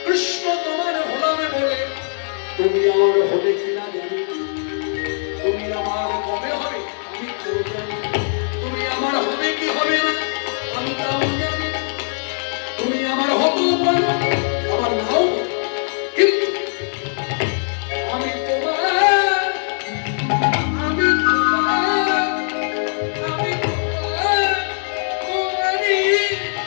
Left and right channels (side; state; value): right; silent; 64 dB below the other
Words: কৃষ্ণ তোমার হলামে বলে, তুমি আমার হবে কিনা জানি, তুমি আমার কবে হবে আমি তো জানি, তুমি আমার হবে কি হবে না আমি তাও জানি, তুমি আমার হতেও পারো আমার নাও, কিন্তু আমি তোমার, আমি তোমার, আমি তোমার, তোমারই